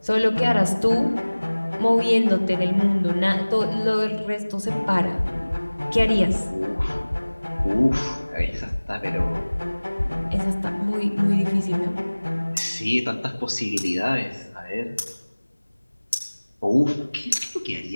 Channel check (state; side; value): inverted; both; correlation -1.00